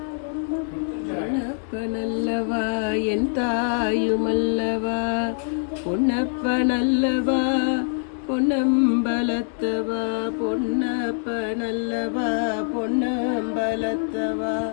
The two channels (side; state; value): right; silent; digital silence